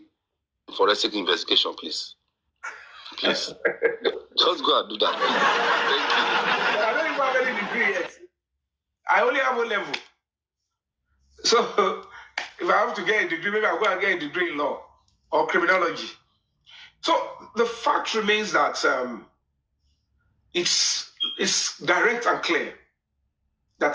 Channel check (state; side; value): identical; both; correlation 1.00